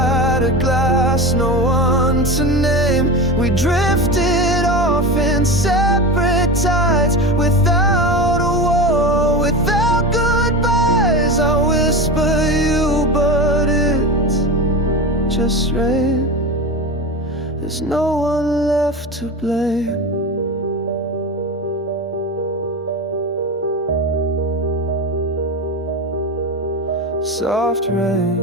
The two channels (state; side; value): normal; both; correlation 0.25